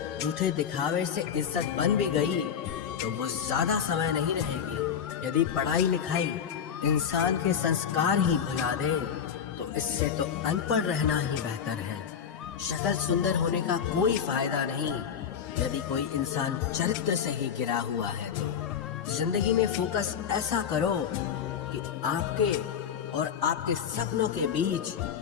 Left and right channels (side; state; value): right; quieter; 7.8 dB